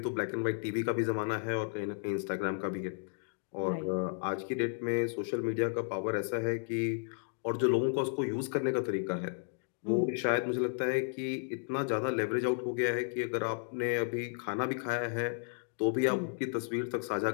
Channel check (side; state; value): right; silent; digital silence